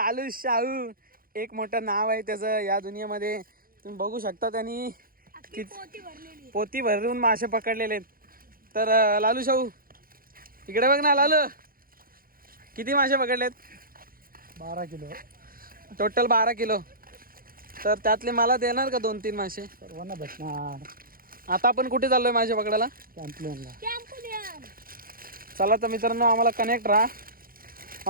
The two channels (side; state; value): left; late; 0.42 ms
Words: शाहू एक मोठं नाव आहे त्याचं या दुनियेमध्ये. तुम्ही बघू शकता त्यांनी पोती भरून मासे पकडलेले आहेत. तर लालू शाहू इकडे बघ ना. लालू किती मासे पकडलेत? 12 किलो. Total 12 kilo. तर त्यातले मला देणार का 2-3 मासे? सर्वांना भेटणार. आता आपण कुठे चाललोय मासे पकडायला? कॅम्पलेनला. चला तर मित्रांनो आम्हाला कनेक्ट राहा.